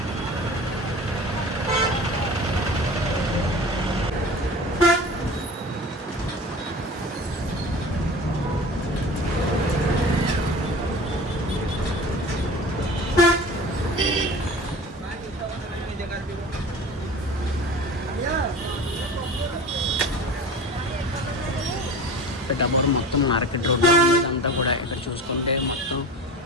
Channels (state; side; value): normal; both; correlation 0.36